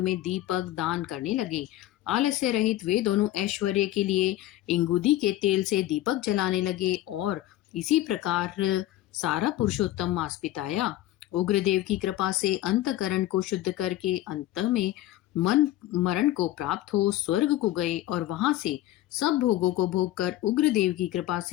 दीपक दान करने लगे। आलस्य रहित वे दोनों ऐश्वर्य के लिए इंगुदी के तेल से दीपक जलाने लगे और इसी प्रकार सारा पुरुषोत्तम मास बिताया। उग्रदेव की कृपा से अंतकरण को शुद्ध करके अंत में मन मरण को प्राप्त हो स्वर्ग को गए और वहां से सब भोगों को भोग कर उग्रदेव की कृपा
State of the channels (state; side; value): quieter; right; 14.6 dB